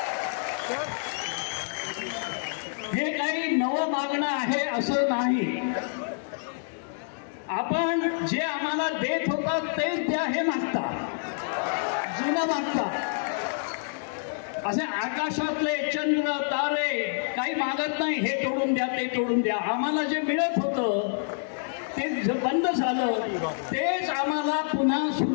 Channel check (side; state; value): right; silent; digital silence